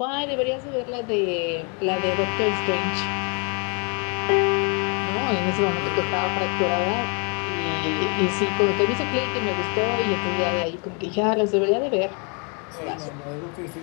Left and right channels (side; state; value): right; quieter; 35.5 dB